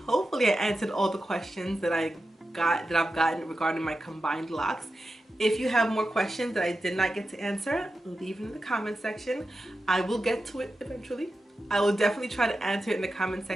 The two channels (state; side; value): normal; both; correlation 0.91